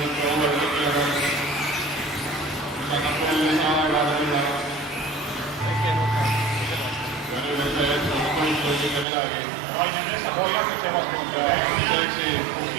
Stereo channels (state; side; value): drops out; left; at 9.1 s